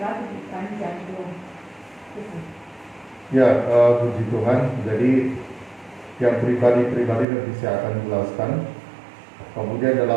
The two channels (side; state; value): left; drops out; at 7.2 s